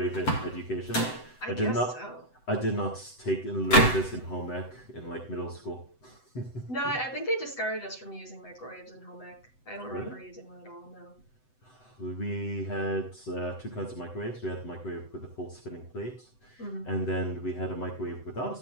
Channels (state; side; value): late; right; 7.9 ms